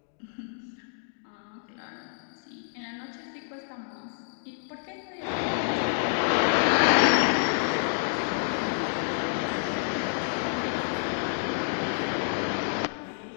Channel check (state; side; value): silent; right; digital silence